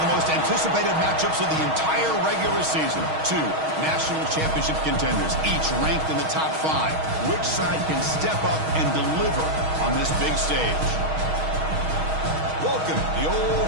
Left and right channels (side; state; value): left; late; 6.3 ms